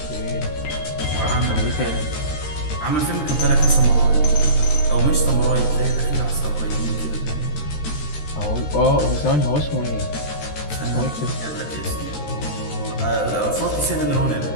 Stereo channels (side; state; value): right; late; 13 ms